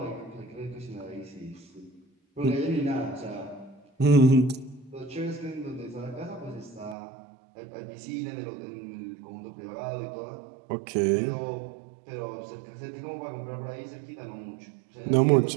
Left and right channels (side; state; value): left; drops out; at 7.0 s